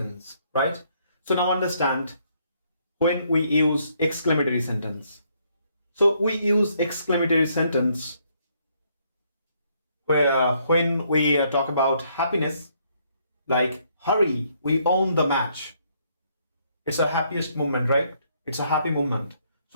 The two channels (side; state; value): both; inverted; correlation -0.70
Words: right? So now understand when we use exclamatory sentence. So we use exclamatory sentence where when we talk about happiness, like hurry, we own the match. It's a happiest moment, right? It's a happy moment.